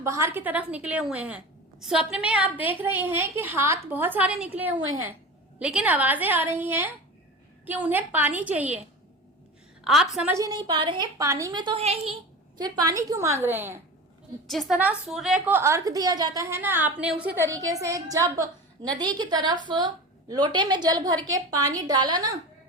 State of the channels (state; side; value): normal; both; correlation 0.31